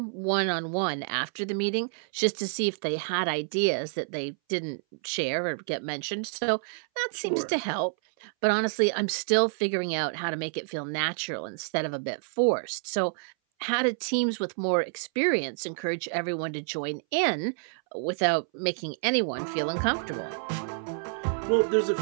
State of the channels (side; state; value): left; silent; 59 dB below the other